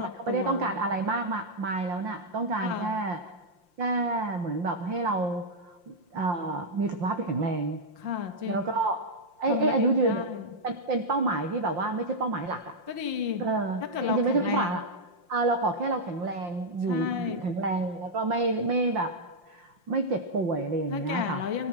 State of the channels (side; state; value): left; late; 5.7 ms